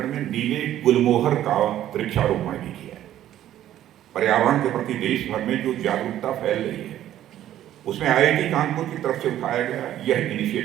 में नीले गुलमोहर का वृक्षारोपण भी किया है। पर्यावरण के प्रति देश भर में जो जागरूकता फैल रही है उसमें IIT कानपुर की तरफ से उठाया गया यह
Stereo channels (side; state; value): left; quieter; 12.2 dB